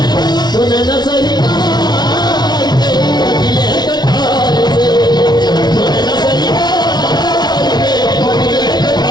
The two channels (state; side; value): late; right; 0.20 ms